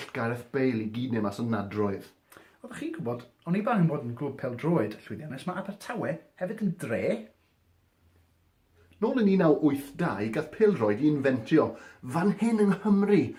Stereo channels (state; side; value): identical; both; correlation 1.00